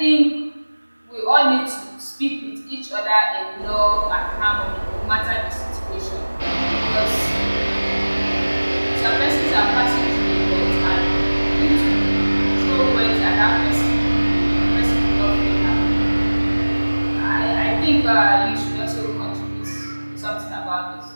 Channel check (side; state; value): both; inverted; correlation -1.00